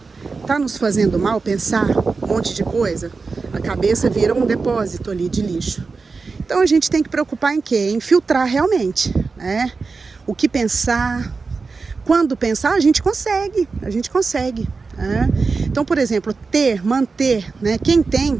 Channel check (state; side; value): quieter; left; 4.4 dB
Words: Tá nos fazendo mal pensar um monte de coisa? A cabeça vira um depósito ali de lixo. Então a gente tem que preocupar em quê? Em filtrar realmente, né? O que pensar, quando pensar, a gente consegue, né? Então, por exemplo, manter, né? Quem tem,